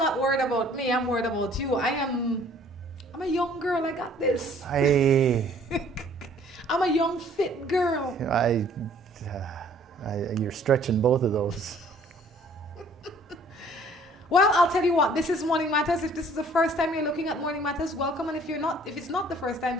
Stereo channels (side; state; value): both; normal; correlation 0.56